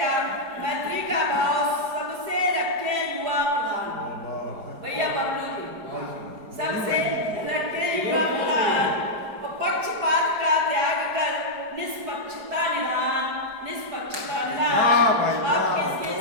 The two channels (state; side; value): late; left; 5.0 ms